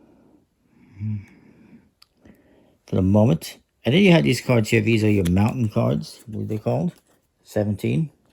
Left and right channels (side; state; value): both; identical; correlation 1.00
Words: for the moment. And then you have these cards here. These are your mountain cards, what are they called? 17.